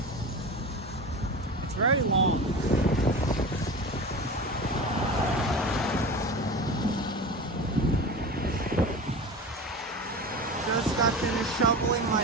It's very long. Just got finished shoveling my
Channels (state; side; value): normal; both; correlation 0.31